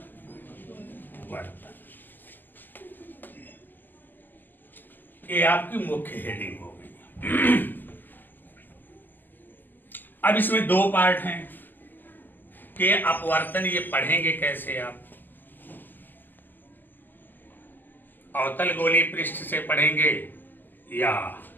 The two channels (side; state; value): right; late; 0.089 ms